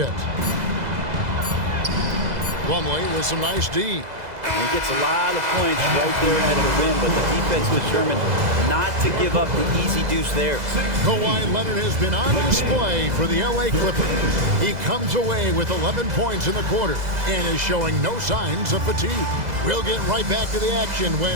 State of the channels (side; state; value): left; late; 2.0 ms